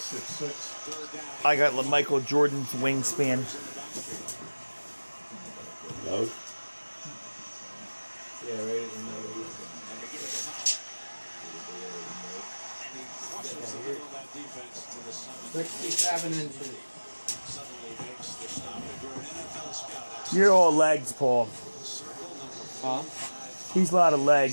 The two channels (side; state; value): both; inverted; correlation -1.00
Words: I got Michael Jordan's wingspan. No. Yeah, right at the nose. 67 inches. You're all legs, Paul. Huh? He's a lot of